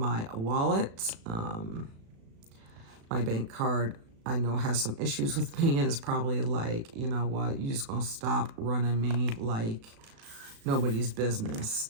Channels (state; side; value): late; left; 36 ms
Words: wallet. My bank card, I know, has some issues with me, and it's probably like, you know what, you just gonna stop running me like nobody's business.